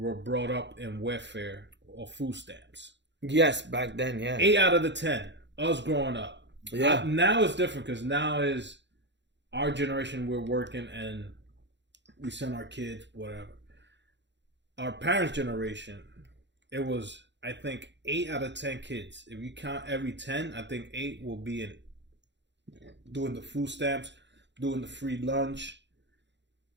brought up in welfare or food stamps. Yes, back then, yeah. 8 out of the 10, us growing up. Yeah. Now it's different because now is our generation. We're working and we send our kids whatever. Our parents' generation, it was, I think, 8 out of 10 kids. If you count every 10, I think 8 will be in doing the food stamps, doing the free lunch.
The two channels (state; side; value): late; left; 0.52 ms